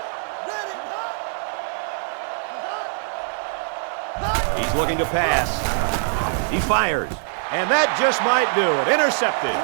He's looking to pass. He fires. And that just might do it. Intercepted.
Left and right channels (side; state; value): left; silent; digital silence